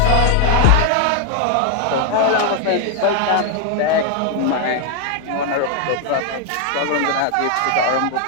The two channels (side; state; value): both; different; correlation 0.00